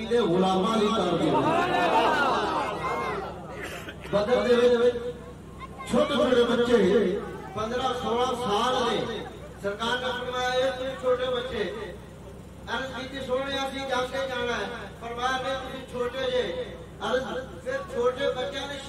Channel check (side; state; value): both; identical; correlation 1.00